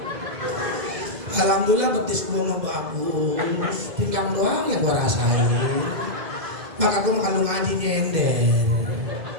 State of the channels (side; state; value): left; late; 2.0 ms